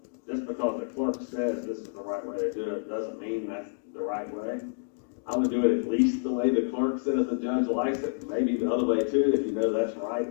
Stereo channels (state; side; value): silent; right; digital silence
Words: just because the clerk says this is the right way to do it doesn't mean that's the right way. I would do it at least the way the clerk says the judge likes it, maybe the other way too, if you know that's right